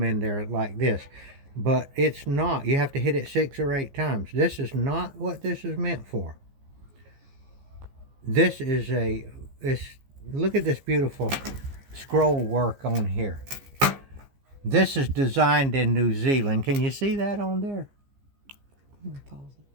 in there like this, but it's not. You have to hit it 6 or 8 times. This is not what this is meant for. This is look at this beautiful scroll work on here. This is designed in New Zealand. Can you see that on there?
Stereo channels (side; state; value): left; late; 15 ms